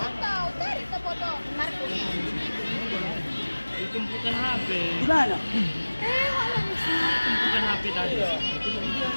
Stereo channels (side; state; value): both; inverted; correlation -1.00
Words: Tumpukan HP. Di mana? Tumpukan HP tadi.